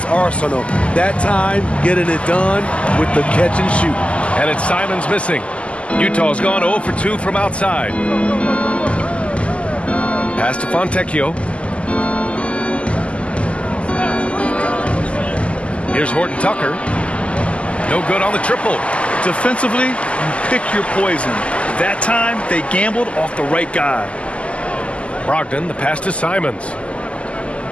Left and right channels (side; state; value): right; late; 0.058 ms